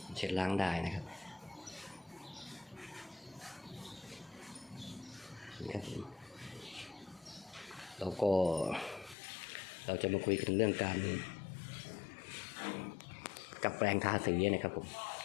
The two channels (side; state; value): right; drops out; at 9.2 s